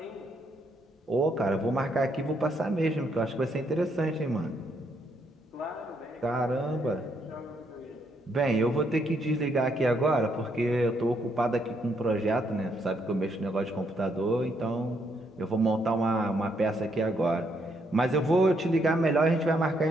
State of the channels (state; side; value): normal; both; correlation 0.74